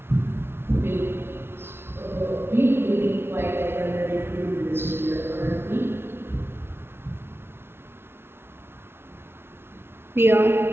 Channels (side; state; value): left; late; 0.12 ms